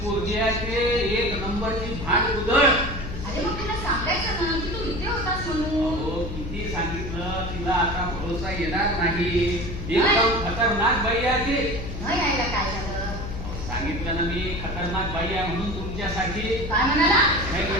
पोरगी आहे ते, 1 नंबरची भांड उधळ. अरे मग तिला सांगायचं ना की तू इथे होतास म्हणून. अहो किती सांगितलं, तिला आता भरोसा येणार नाही. एकदम खतरनाक बाई आहे ती. न यायला काय झालं? सांगितलं ना मी, खतरनाक बाई आहे म्हणून तुमच्यासाठी. काय म्हणाला? नाही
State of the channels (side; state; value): left; noise; hum, 7 dB below the sound